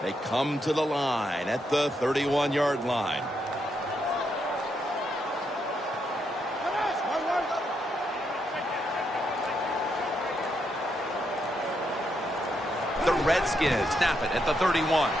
They come to the line at the 31-yard line. The Redskins snap it at the 31.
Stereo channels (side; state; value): both; normal; correlation 0.79